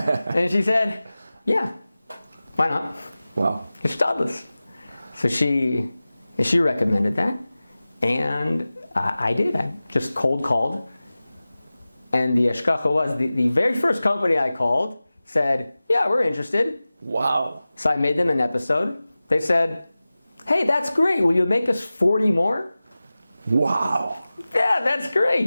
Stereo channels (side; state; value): both; inverted; correlation -0.97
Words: she said, yeah, why not? Wow. It's Stadlis. So she recommended that, and I did. I just cold called. And the Eshkacha was, the very first company I called said, yeah, we're interested. Wow. So I made them an episode. They said, hey, that's great. Will you make us 40 more? Wow. Yeah, that's